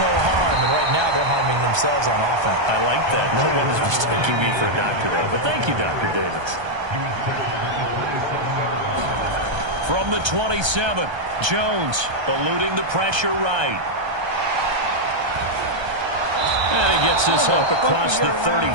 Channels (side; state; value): left; late; 1.3 ms